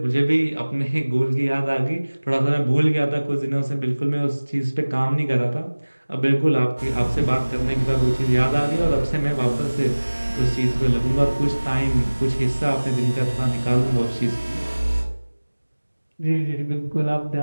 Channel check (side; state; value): both; inverted; correlation -1.00